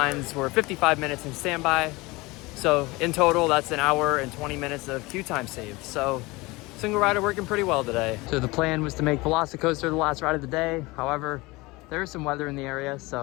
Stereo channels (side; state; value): right; quieter; 22.7 dB